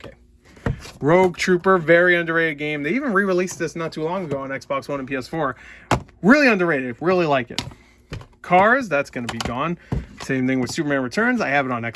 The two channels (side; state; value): both; identical; correlation 1.00